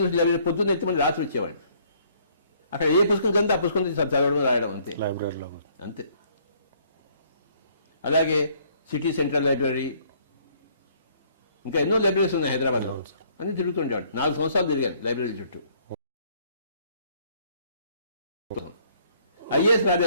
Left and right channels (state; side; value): inverted; both; correlation -0.63